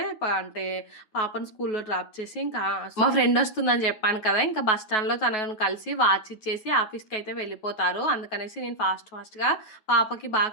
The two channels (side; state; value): right; late; 9.3 ms